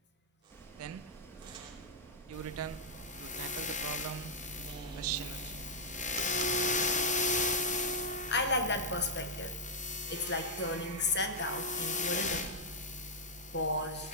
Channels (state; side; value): normal; both; correlation -0.05